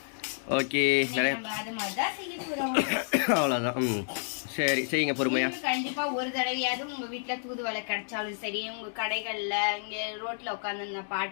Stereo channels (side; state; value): right; silent; digital silence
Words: ஓகே, அது மாதிரி தான் செய்ய போகிறோம். அவ்வளோதான். சரி, செய்யுங்க பொறுமையா. கண்டிப்பா ஒரு தடவையாவது உங்க வீட்டுல தூதுவளை கிடைச்சாலும் சரி, உங்க கடைகள்ல இங்க ரோட்ல உட்காந்து